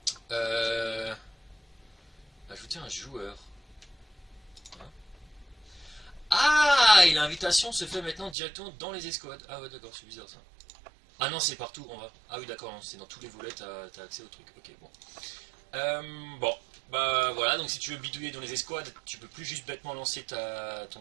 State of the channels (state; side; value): drops out; left; at 8.3 s